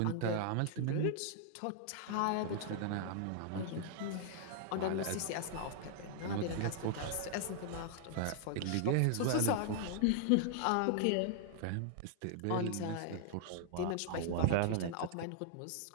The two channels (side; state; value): both; different; correlation -0.01